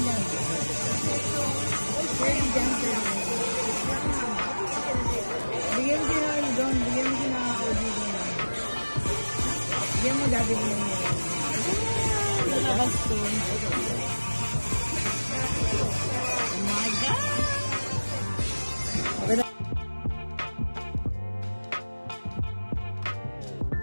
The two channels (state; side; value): inverted; both; correlation -1.00